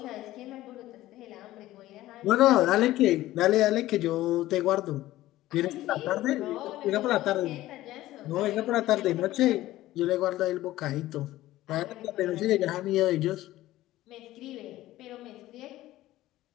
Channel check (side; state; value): right; quieter; 15.7 dB